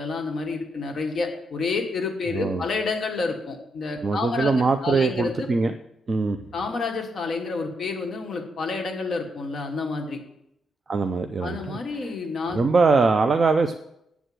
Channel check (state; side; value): normal; both; correlation 0.80